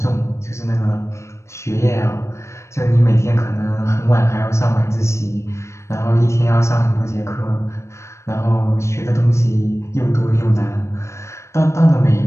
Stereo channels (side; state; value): right; late; 0.13 ms